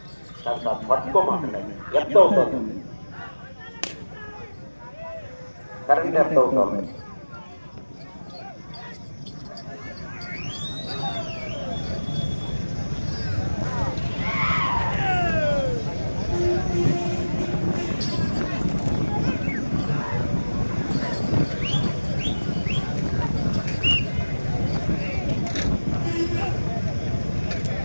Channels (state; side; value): inverted; both; correlation -1.00